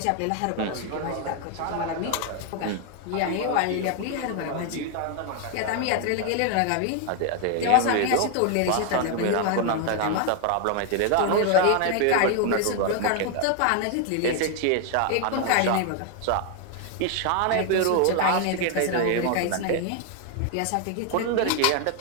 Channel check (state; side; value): different; both; correlation 0.00